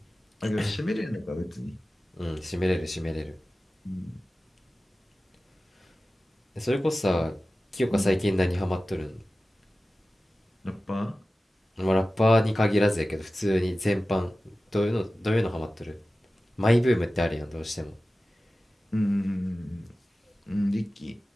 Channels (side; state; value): both; normal; correlation 0.96